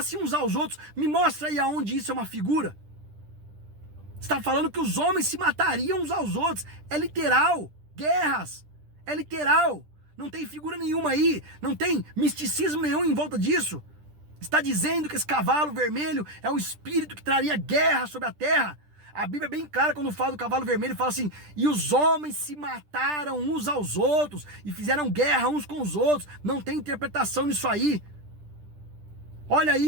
uns aos outros. Me mostra aí aonde isso é uma figura. Está falando que os homens se matariam uns aos outros. É literal. Guerras. É literal. Não tem figura nenhuma aí. Não tem misticismo nenhum em volta disso. Está dizendo que esse cavalo vermelho é um espírito que traria guerra sobre a terra. A Bíblia é bem clara quando fala do cavalo vermelho. Fala assim: e os homens se mataram uns aos outros e fizeram guerra uns com os outros. Não tem interpretação nisso aí. Olha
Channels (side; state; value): left; late; 10 ms